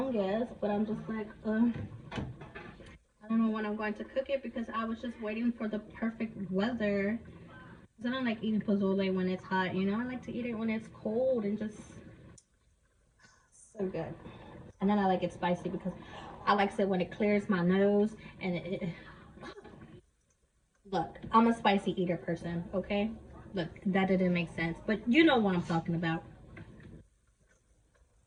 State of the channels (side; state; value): both; identical; correlation 1.00